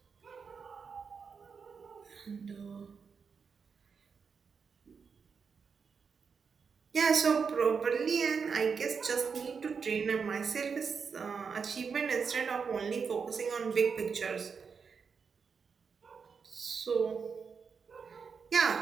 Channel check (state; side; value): quieter; left; 5.8 dB